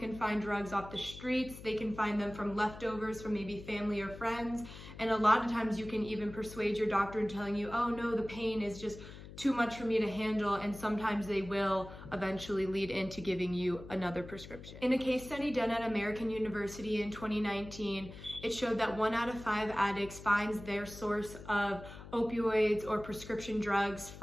find drugs off the streets. They can find them from leftovers from maybe family or friends. And a lot of times you can even persuade your doctor in telling you, oh no, the pain is just too much for me to handle, and sometimes they will eventually lead into giving you another prescription. In a case study done at American University in 2019, it showed that 1 out of 5 addicts finds their source of opioids or prescription drugs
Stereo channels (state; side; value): noise; left; hum, 14 dB below the sound